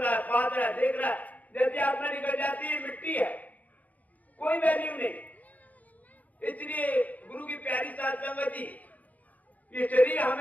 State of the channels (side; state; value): right; late; 0.075 ms